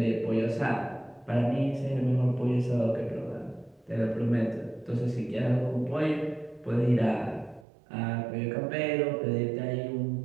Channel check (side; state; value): left; drops out; at 7.7 s